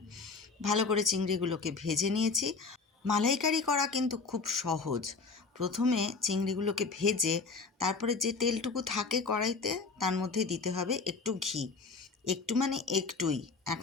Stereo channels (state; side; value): quieter; right; 4.5 dB